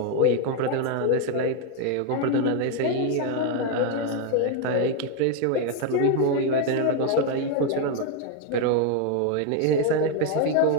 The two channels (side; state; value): both; different; correlation 0.01